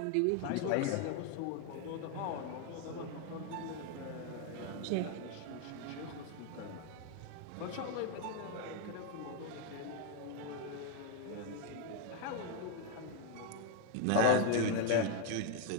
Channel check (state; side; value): different; both; correlation 0.00